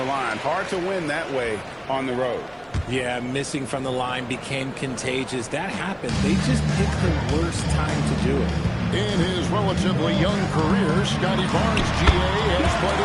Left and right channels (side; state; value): both; identical; correlation 1.00